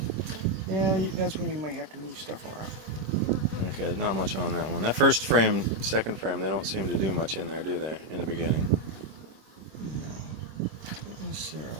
Yeah, that's when you might have to move stuff around. Okay, not much on that one. That first frame, second frame, they don't seem to do much in there, do they, in the beginning? No, not necessarily.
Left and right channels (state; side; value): late; left; 26 ms